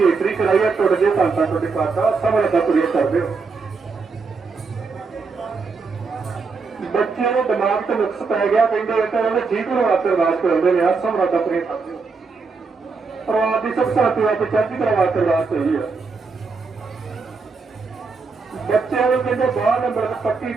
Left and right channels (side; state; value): left; quieter; 4.6 dB